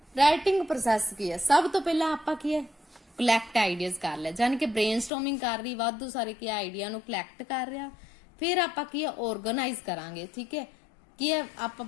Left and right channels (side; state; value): right; drops out; at 5.1 s